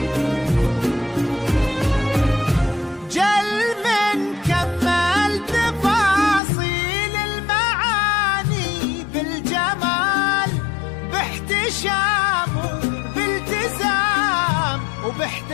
جل من كمل تفاصيل المعاني بالجمال، باحتشام وبالتزام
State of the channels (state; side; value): drops out; right; at 6.4 s